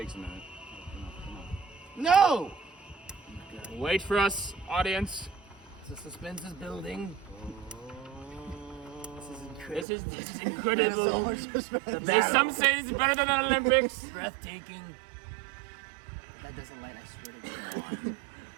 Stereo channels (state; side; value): drops out; left; at 9.9 s